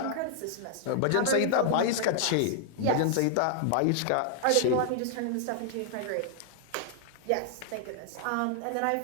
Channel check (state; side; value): different; both; correlation -0.01